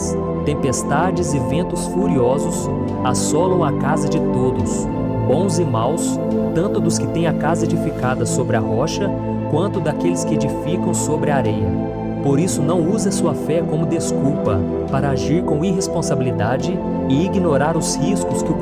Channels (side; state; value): both; identical; correlation 1.00